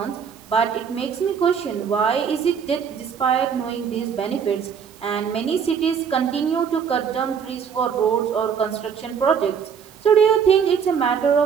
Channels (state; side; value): quieter; left; 7.1 dB